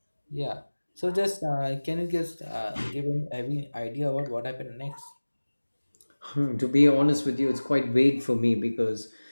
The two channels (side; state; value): both; inverted; correlation -1.00